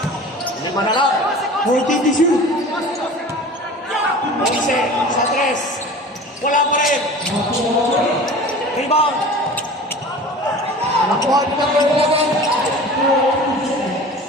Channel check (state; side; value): normal; both; correlation 0.39